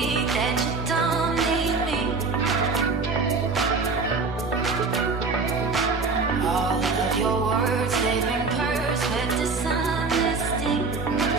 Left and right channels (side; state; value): left; quieter; 4.2 dB